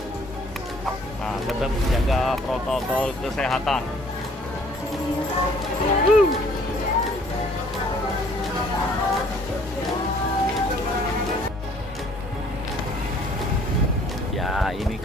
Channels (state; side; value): normal; both; correlation 0.58